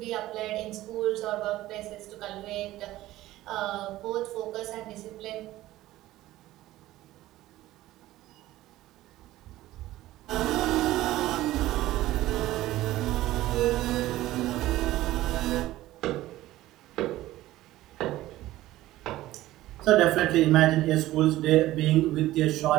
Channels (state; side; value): quieter; left; 15.9 dB